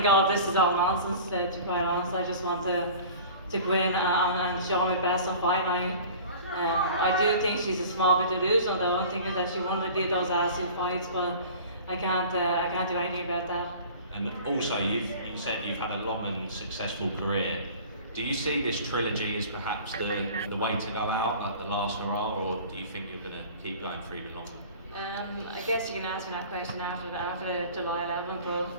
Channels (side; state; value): both; inverted; correlation -0.42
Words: all of this is all nonsense, to be quite honest. I just want to go in and show my best on fight night. I do think she's a small bit delusional though. I'm thinking that she wanted to do those attitude fights, but I can't do anything about that. And also, you said you've had a long and successful career. Do you see this trilogy as perhaps the way to go out, like the last hurrah, or do you think you're going to keep going for even longer? I guess you can ask me that question after July 11th, but